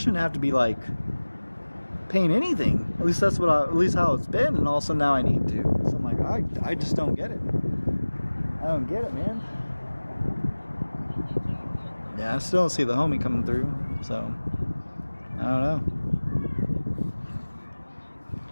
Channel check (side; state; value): both; inverted; correlation -1.00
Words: have to be like paying anything. At least that's what at least how it's been, and all of a sudden now I need to. So I'm like, I just don't get it. I don't get it, man. Yeah, I still don't see the homie coming through, so I don't know.